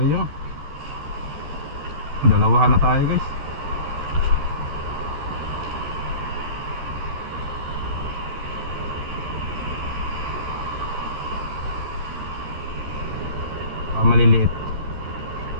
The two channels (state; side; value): late; left; 13 ms